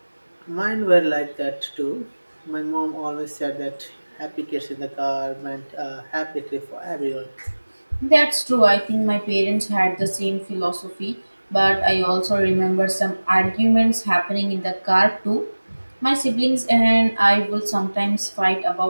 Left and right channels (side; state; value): both; inverted; correlation -1.00